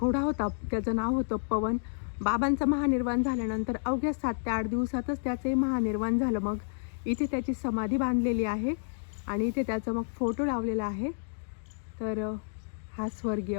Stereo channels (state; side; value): silent; right; digital silence